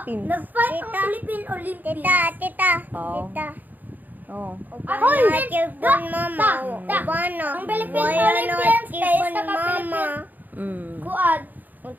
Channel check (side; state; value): left; late; 0.084 ms